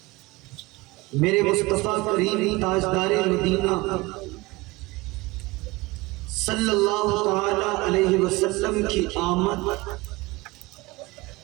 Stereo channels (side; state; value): left; quieter; 22.2 dB